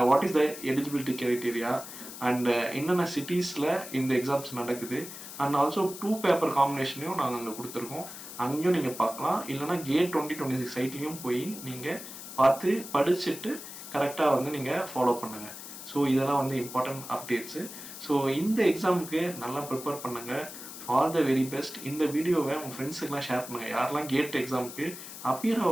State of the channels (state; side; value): noise; left; hiss, 12 dB below the sound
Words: what is the eligibility criteria and என்னென்ன சிட்டிஸில் இந்த எக்ஸாம்ஸ் நடக்குது அண்ட் ஆல்சோ 2 பேப்பர் காம்பினேஷனையும் நாங்கள் அங்கே கொடுத்துருக்கோம். அங்கேயும் நீங்கள் பார்க்கலாம். இல்லைனா கேட் 2026 சைட்லேயும் போய் நீங்கள் பார்த்து படிச்சுட்டு கரெக்டாக வந்து நீங்கள் ஃபாலோ பண்ணுங்கள். ஸோ இதெல்லாம் வந்து இம்பார்ட்டன்ட் அப்டேட்ஸு. ஸோ இந்த எக்ஸாமுக்கு நல்லா ப்ரிப்பேர் பண்ணுங்கள். All the very best. இந்த வீடியோவை உங்கள் ஃப்ரெண்ட்ஸுக்கெலாம் ஷேர் பண்ணுங்கள். யாரெல்லாம் கேட் எக்ஸாமுக்கு அப்பியர்